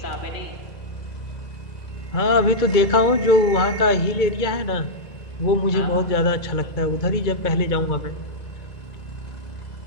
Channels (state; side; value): late; right; 2.2 ms